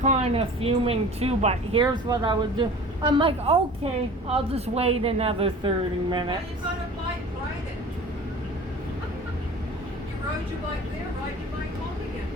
of fuming too, but here's what I would do. I'm like, okay, I'll just wait another 30 Well, minutes. you got a bike, ride it. You rode your bike there, ride your bike home again.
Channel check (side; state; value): both; normal; correlation 0.42